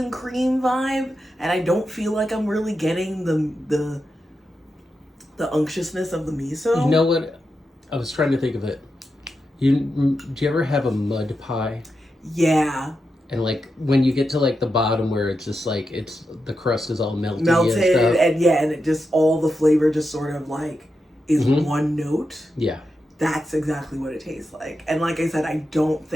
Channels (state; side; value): normal; both; correlation 0.88